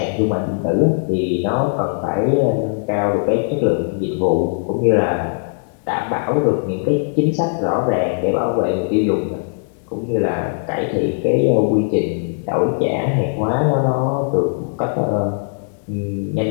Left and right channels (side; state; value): right; silent; digital silence